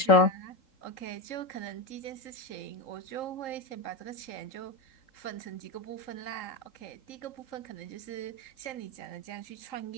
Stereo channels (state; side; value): late; right; 3.8 ms